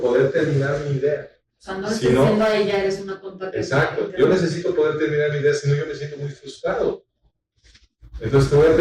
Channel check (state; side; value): identical; both; correlation 1.00